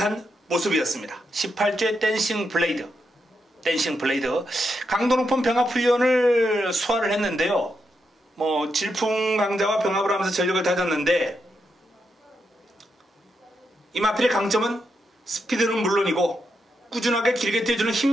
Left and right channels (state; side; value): normal; both; correlation 0.83